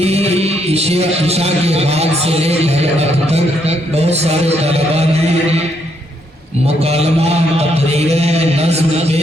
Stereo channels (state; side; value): normal; both; correlation 0.74